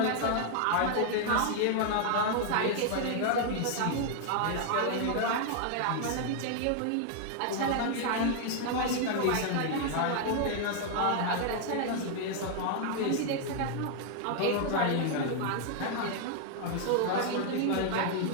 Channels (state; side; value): different; both; correlation 0.00